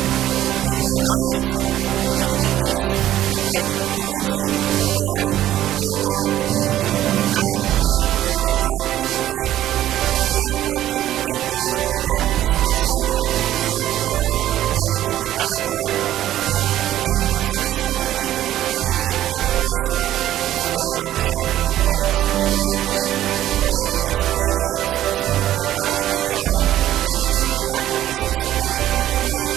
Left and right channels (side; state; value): left; quieter; 12.9 dB